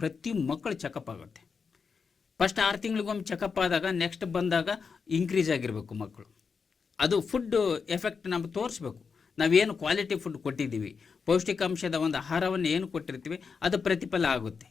ಮಕ್ಕಳು ಚೆಕಪ್ ಆಗುತ್ತೆ. ಫಸ್ಟ್ 6 ತಿಂಗಳಿಗೊಮ್ಮೆ ಚೆಕಪ್ ಆದಾಗ ನೆಕ್ಸ್ಟ್ ಬಂದಾಗ ಇನ್ಕ್ರೀಸ್ ಆಗಿರಬೇಕು ಮಕ್ಕಳು. ಅದು ಫುಡ್ ಎಫೆಕ್ಟ್ ನಮ್ಗೆ ತೋರಿಸ್ಬೇಕು. ನಾವೇನು ಕ್ವಾಲಿಟಿ ಫುಡ್ ಕೊಟ್ಟಿದ್ದೀವಿ, ಪೌಷ್ಟಿಕಾಂಶದ ಒಂದು ಆಹಾರವನ್ನು ಏನು ಕೊಟ್ಟಿರ್ತೀವಿ ಅದು ಪ್ರತಿಫಲ ಆಗುತ್ತೆ,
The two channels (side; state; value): right; quieter; 5.5 dB